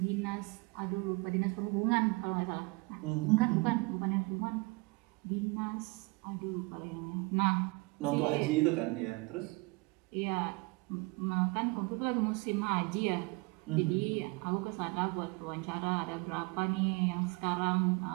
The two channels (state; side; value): quieter; left; 26.7 dB